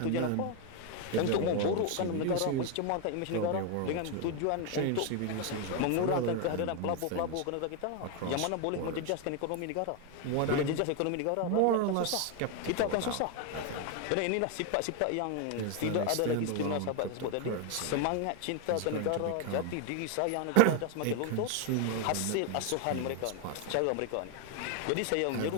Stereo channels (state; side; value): different; both; correlation 0.01